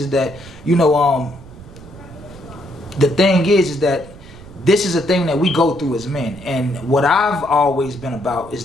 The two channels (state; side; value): noise; right; rumble, 18 dB below the sound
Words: that, you know, the thing is that this is a thing that we go through as men, and what I've always been about is